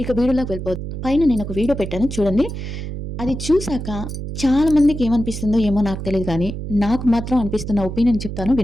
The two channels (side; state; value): right; noise; hum, 7 dB below the sound